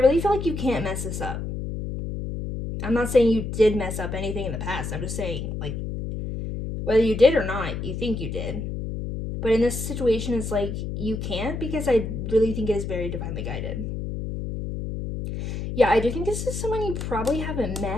feel like you can't mess this up. I'm not saying you did mess up anything in the past. I'm just saying, like, whether you did or not, you think you did. But in this situation, it's like, you can't, because I really think it is very divinely guided. Yeah, I do think this is someone you probably haven't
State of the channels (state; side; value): noise; left; hum, 5 dB below the sound